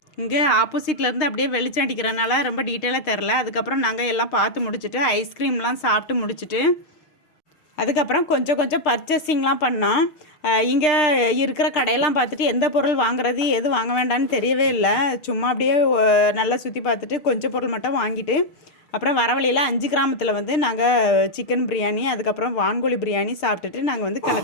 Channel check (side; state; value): right; late; 6.6 ms